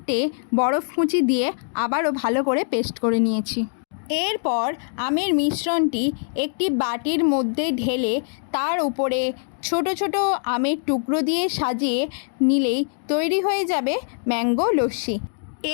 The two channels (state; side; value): silent; right; digital silence